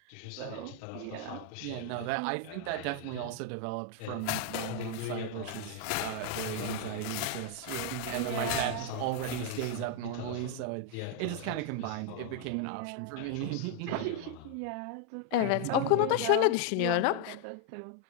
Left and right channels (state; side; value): different; both; correlation 0.00